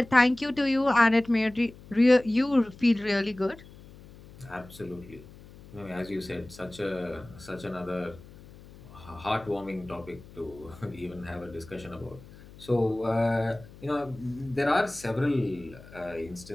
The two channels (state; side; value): noise; left; hum, 20 dB below the sound